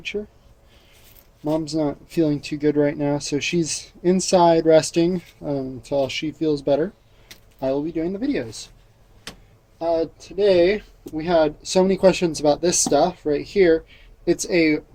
Mom's not feeling too good right now, so she's inside resting until she feels better. I will be doing the videos. Today we had so many questions about this stuff right here. It's a,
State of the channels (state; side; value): identical; both; correlation 1.00